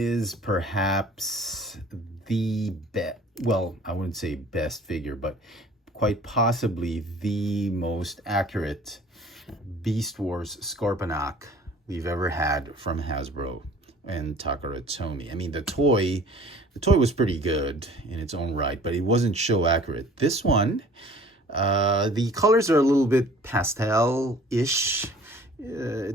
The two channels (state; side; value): normal; both; correlation 0.49